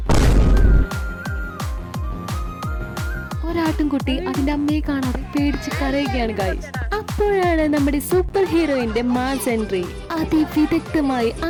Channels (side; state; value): both; identical; correlation 1.00